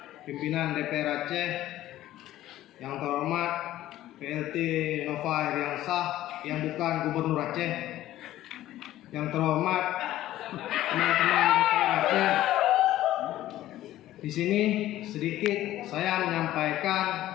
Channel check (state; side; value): quieter; right; 14.3 dB